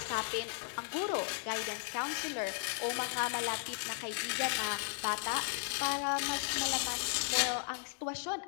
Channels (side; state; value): right; silent; digital silence